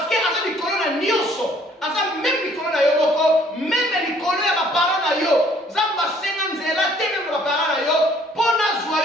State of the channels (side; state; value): both; normal; correlation 0.60